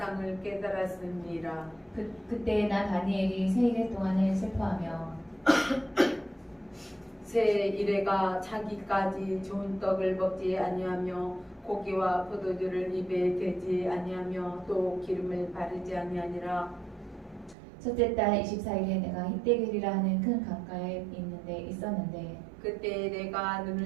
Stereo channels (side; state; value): left; drops out; at 17.6 s